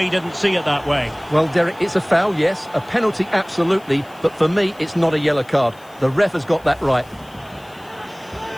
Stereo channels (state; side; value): noise; left; hiss, 28 dB below the sound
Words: didn't see it that way. Well, Derek, it's a foul, yes. A penalty, absolutely. But for me, it's not a yellow card. The ref has got that right.